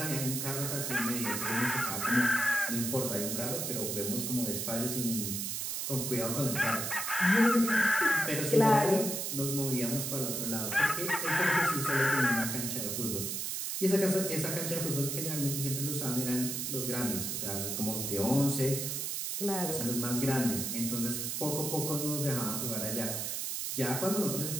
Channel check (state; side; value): noise; right; hiss, 2 dB below the sound